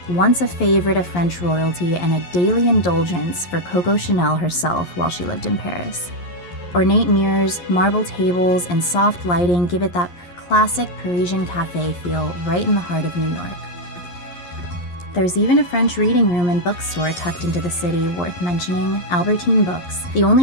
once a favorite of French royalty and a daily indulgence for Coco Chanel herself while she lived in Paris. Ornate mirrors, marble tables, and soft lighting give it that classic Parisian cafe feel right in the heart of New York. There's even a French reading room and bookstore tucked into the city worth mentioning, Albertine Books. The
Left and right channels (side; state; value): right; late; 11 ms